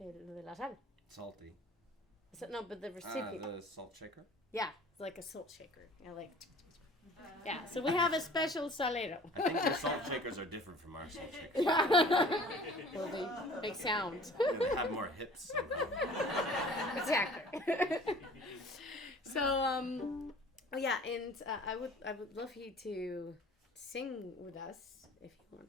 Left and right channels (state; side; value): normal; both; correlation 0.47